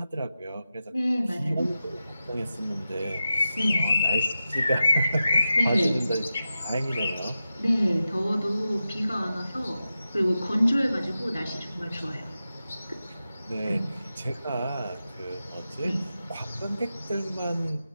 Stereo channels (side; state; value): both; inverted; correlation -0.92